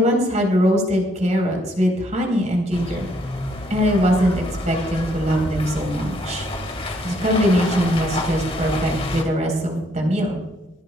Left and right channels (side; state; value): both; normal; correlation 0.69